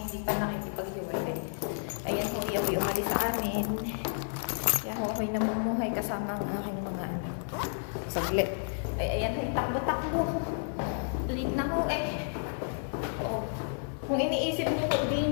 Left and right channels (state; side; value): silent; right; digital silence